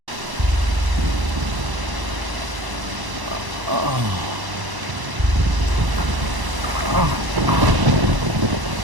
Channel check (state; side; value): late; left; 1.0 ms